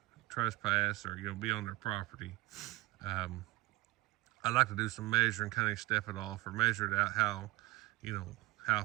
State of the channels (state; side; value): quieter; left; 18.5 dB